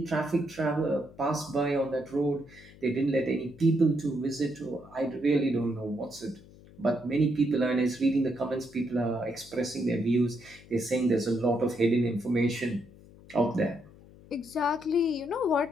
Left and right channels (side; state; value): left; noise; hum, 22 dB below the sound